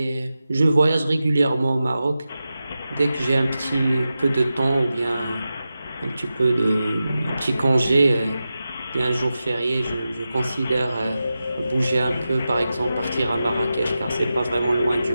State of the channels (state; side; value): inverted; both; correlation -0.92